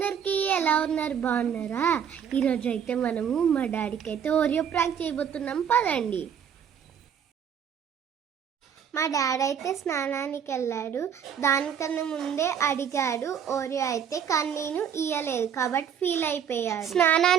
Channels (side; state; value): left; quieter; 8.1 dB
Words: ఎలా ఉన్నారు? బాగున్నారా? ఈరోజు అయితే మనము మా డాడీకి అయితే ఓరియో ప్రాంక్ చేయబోతున్నాం. పదండి. మా డాడీ అయితే స్నానానికి వెళ్ళాడు. దానికన్నా ముందే అడిగాడు ఓరియో అయితే, కానీ నేను ఇయ్యలేదు కాబట్టి ఫీల్ అయిపోయాడు.